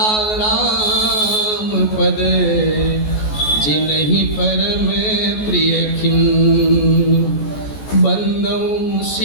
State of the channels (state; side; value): late; right; 14 ms